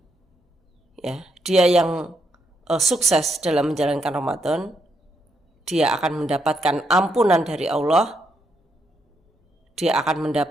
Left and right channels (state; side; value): normal; both; correlation 0.78